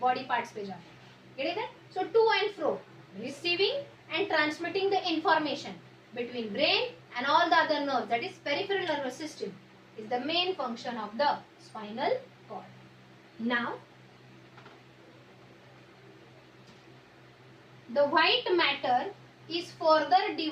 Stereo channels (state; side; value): identical; both; correlation 1.00